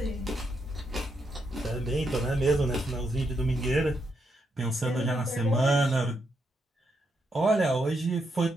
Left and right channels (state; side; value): normal; both; correlation 0.80